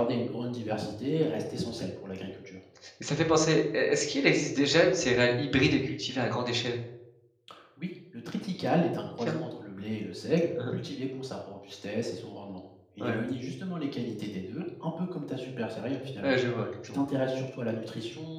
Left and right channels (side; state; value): both; identical; correlation 1.00